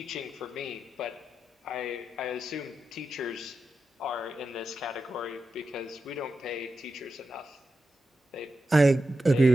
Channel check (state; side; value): normal; both; correlation 0.89